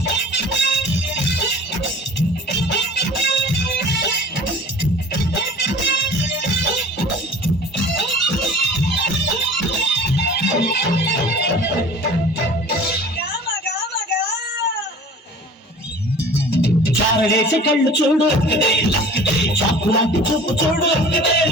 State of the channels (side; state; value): both; normal; correlation 0.43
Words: చారడేసి కళ్ళు చూడు చాకు లాంటి చూపు చూడు